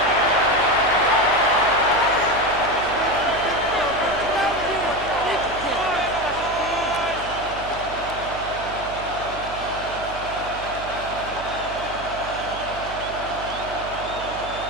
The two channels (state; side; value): noise; right; hum, 14 dB below the sound